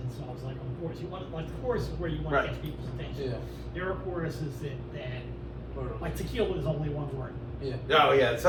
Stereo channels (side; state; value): both; identical; correlation 1.00